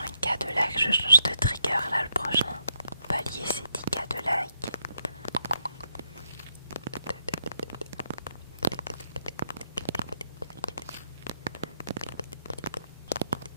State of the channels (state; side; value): inverted; both; correlation -0.77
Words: de like, je change de trigger là le prochain. Palier c'est 10K de like.